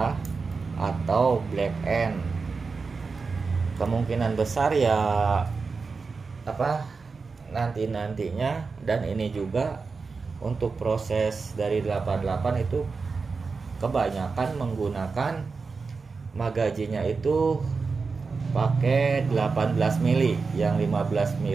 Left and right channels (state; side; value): quieter; left; 4.6 dB